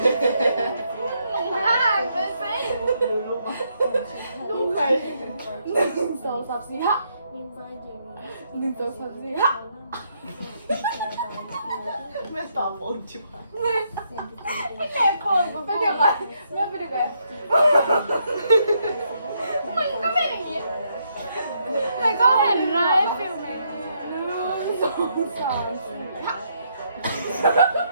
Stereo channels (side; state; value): both; inverted; correlation -0.75